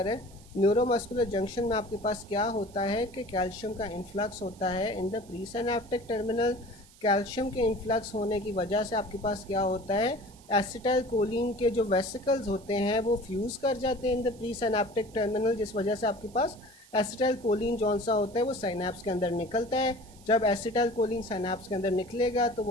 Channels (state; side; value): noise; right; hiss, 25 dB below the sound